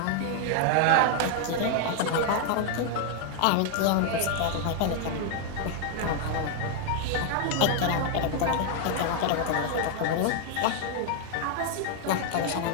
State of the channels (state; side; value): different; both; correlation 0.00